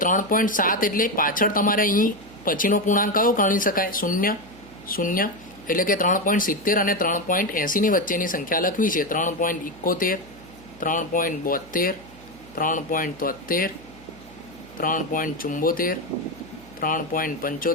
એટલે પાછળ તમારે અહીં પછીનો પૂર્ણાંક કયો ગણી શકાય? 0. એટલે કે 3.70 અને 3.80 ની વચ્ચેની સંખ્યા લખવી છે. 3.71, 3.72, 3.73, 3.74,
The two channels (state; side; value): noise; right; hum, 22 dB below the sound